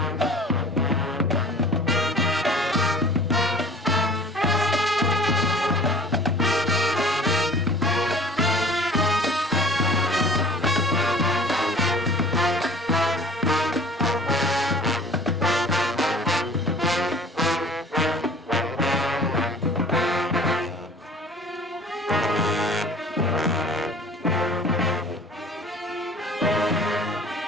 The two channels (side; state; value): both; normal; correlation 0.47